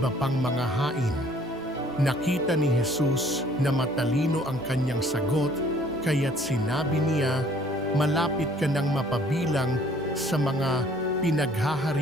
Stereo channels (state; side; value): noise; right; rumble, 25 dB below the sound